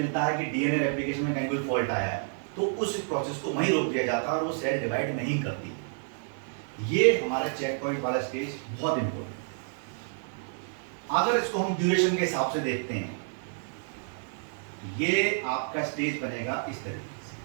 है कि डीएनए रेप्लिकेशन में कहीं कोई फॉल्ट आया है, तो उस प्रोसेस को वहीं रोक दिया जाता है और वो सेल डिवाइड नहीं करती। ये हमारा चेक पॉइंट वाला स्टेज बहुत इंपॉर्टेंट है। अगर इसको हम ड्यूरेशन के हिसाब से देखते हैं, ये आपका स्टेज बनेगा इस तरीके से,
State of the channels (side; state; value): left; silent; 58 dB below the other